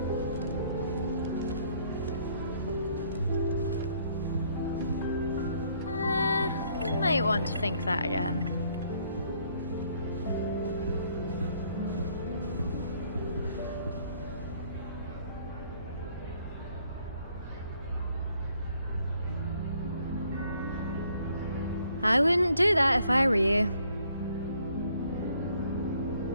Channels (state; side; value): inverted; both; correlation -0.65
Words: Might want to think that again. I wouldn't do that if I were you.